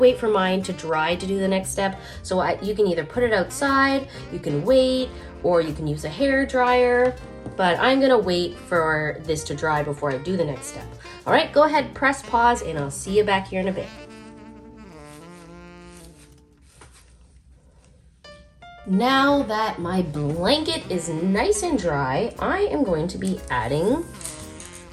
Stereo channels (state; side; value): identical; both; correlation 1.00